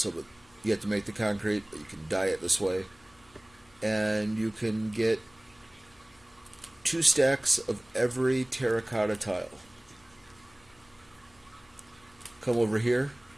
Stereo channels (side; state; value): left; noise; hum, 30 dB below the sound